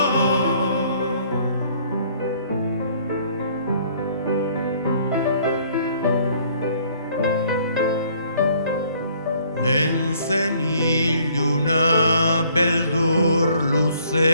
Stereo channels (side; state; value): both; inverted; correlation -0.61